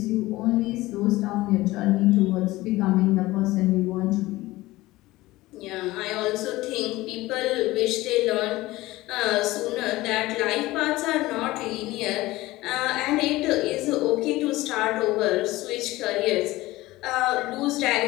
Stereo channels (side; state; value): right; quieter; 18.5 dB